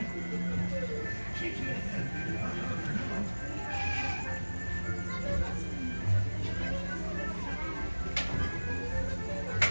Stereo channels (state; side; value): inverted; both; correlation -1.00